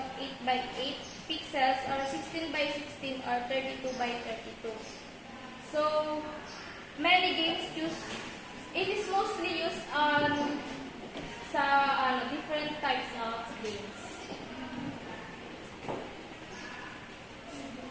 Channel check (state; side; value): identical; both; correlation 1.00